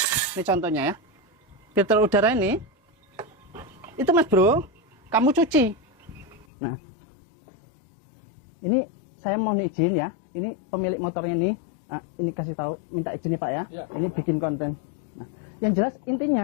Ini contohnya ya. Filter udara ini itu Mas Bro, kamu cuci. Nah, ini saya mohon izin ya. Ini pemilik motornya nih. Ini kasih tahu, minta izin nih Pak ya. Ini bikin konten. Nah, yang jelas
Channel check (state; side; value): drops out; right; at 6.5 s